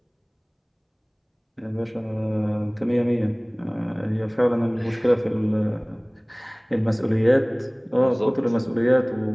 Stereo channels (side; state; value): both; identical; correlation 1.00